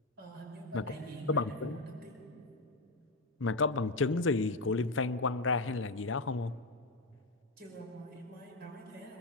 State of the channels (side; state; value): right; quieter; 3.0 dB